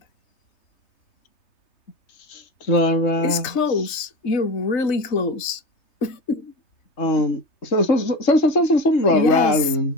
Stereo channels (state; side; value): late; right; 3.3 ms